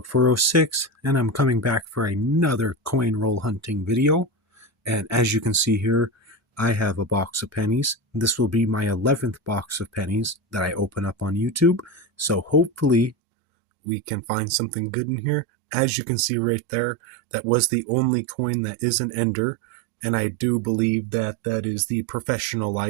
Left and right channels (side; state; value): left; drops out; at 13.2 s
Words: and I'm coming back for another coin roll hunting video. And as you can see here, I have a box of pennies. This will be my 11th box of pennies that I open up on YouTube. So hopefully we can find something good in here. As you can see right there, that was the only coin that is an ender. And I do believe that that is the Professional